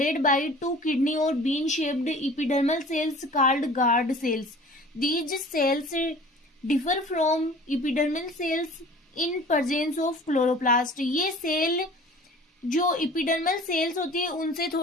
by two kidney और bean shaped epidermal cells called guard cells. These cells differ from epidermal cells in presence of chloroplast. ये cell जो epidermal cells होती है उनसे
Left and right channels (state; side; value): normal; both; correlation 0.45